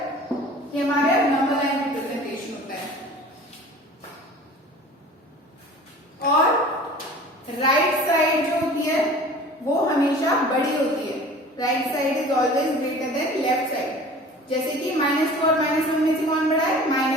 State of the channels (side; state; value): both; normal; correlation 0.43